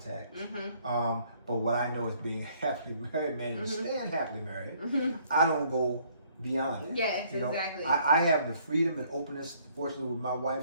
But what I know is being happily married, man, and staying happily married, I don't go beyond that. Yes, exactly. I have the freedom and openness, fortunately, with my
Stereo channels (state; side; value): inverted; both; correlation -0.63